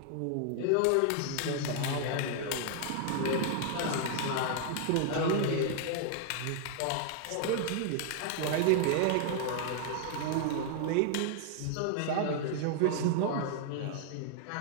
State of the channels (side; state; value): both; different; correlation 0.00